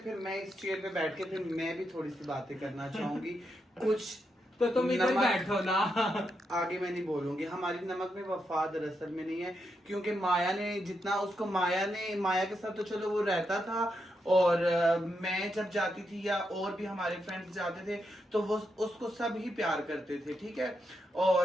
मैं इस चेयर पे बैठ के फिर मैं भी थोड़ी सी बातें करना चाहूंगी। कुछ तो तुम इधर बैठो ना। आगे मैं नहीं बोलूंगी। हमारी नमक में वफा दरअसल में नहीं है, क्योंकि माया ने जितना उसको माया के साथ तो चलो वो रहता था, और मैं जब जाती थी या और भी हमारे फ्रेंड्स जाते थे तो वो उसको सब ही प्यार करते थे, ठीक है।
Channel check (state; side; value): normal; both; correlation 0.83